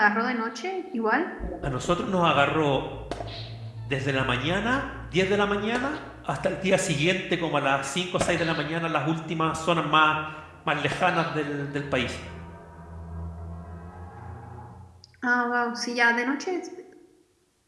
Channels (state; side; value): identical; both; correlation 1.00